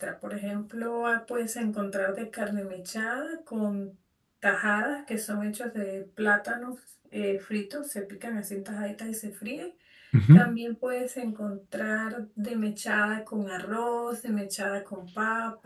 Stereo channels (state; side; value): identical; both; correlation 1.00